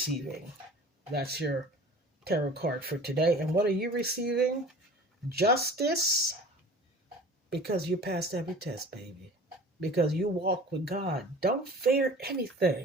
That's your tarot card for today. And what are you receiving? Justice, because you passed every test, baby. Because you walk with God. Don't fear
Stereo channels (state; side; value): normal; both; correlation 0.43